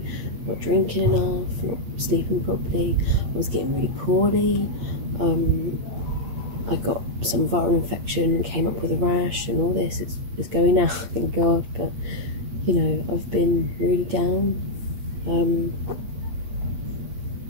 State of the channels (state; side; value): late; left; 8.6 ms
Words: not drinking enough, not sleeping properly. I was getting really poorly. I got some viral infection and came up with a rash and all this. It's going now, thank God, but you know, I've been really down.